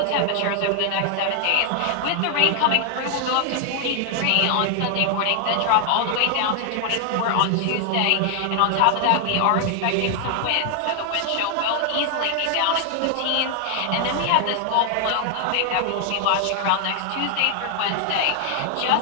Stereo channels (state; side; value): different; both; correlation 0.00